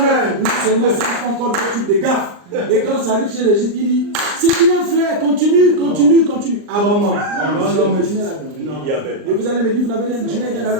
Non seulement ça, il faut encore d'autres types de gaffes. Et quand ça arrive chez les gens, il dit c'est bien frère, continue. Ah bon, non, continuez là-dedans. Et vous allez me dire, vous n'avez rien, je n'ai rien à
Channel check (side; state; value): left; late; 39 ms